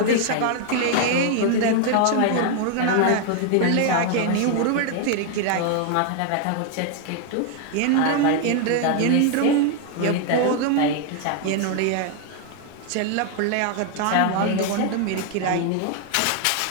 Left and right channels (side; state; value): both; different; correlation 0.00